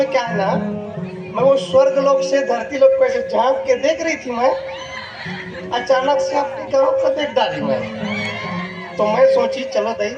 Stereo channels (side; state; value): both; identical; correlation 1.00